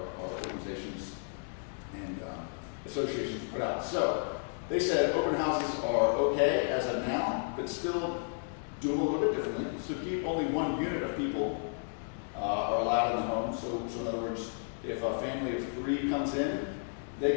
organizations and associations put out. So they said open houses are okay as of now, but still do them a little bit differently. So keep only one unit of people are allowed in the home. So in other words, if a family of 3 comes in, they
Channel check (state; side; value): silent; right; digital silence